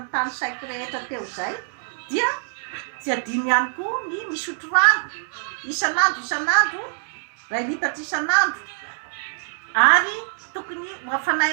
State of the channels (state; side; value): silent; left; digital silence